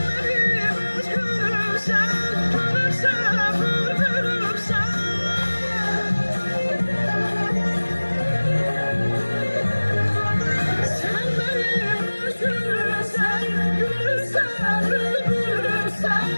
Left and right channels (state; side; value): inverted; both; correlation -1.00